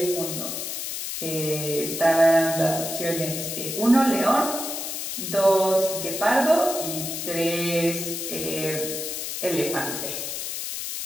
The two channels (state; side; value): noise; left; hiss, 5 dB below the sound